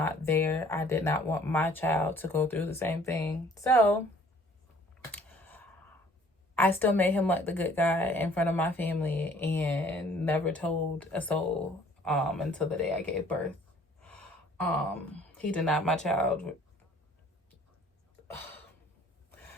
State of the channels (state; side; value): normal; both; correlation 0.56